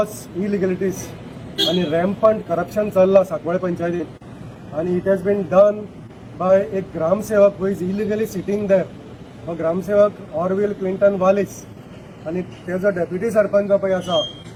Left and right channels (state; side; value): identical; both; correlation 1.00